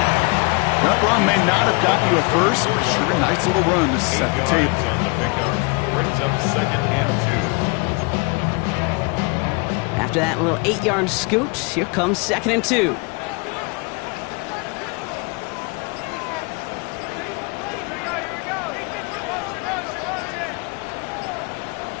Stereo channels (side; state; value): right; quieter; 30.6 dB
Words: That run may not have gotten you a first, but sure a nice little run to set the table. On the pickup brings up 2nd and 2. After that little 8-yard scoot, here comes 2nd and 2.